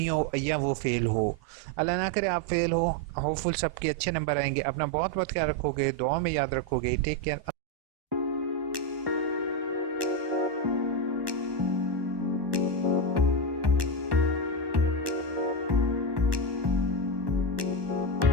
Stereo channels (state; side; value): late; left; 1.2 ms